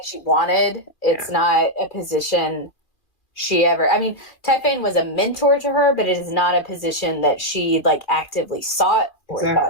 she wanted. It's not a position she ever... I mean, Typhane was a mentor to her, but it is not a position that she, like, actively sought or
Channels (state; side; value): late; right; 2.4 ms